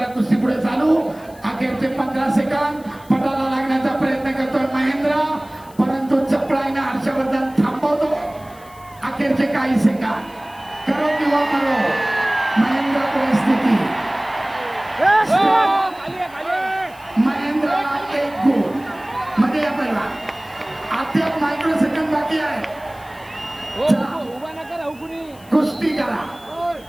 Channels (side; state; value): left; noise; hiss, 25 dB below the sound